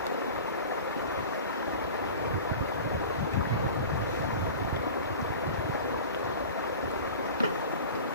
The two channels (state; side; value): inverted; both; correlation -0.37